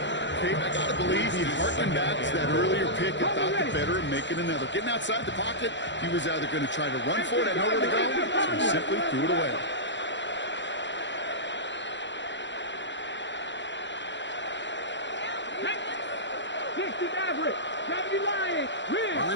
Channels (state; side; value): late; right; 0.53 ms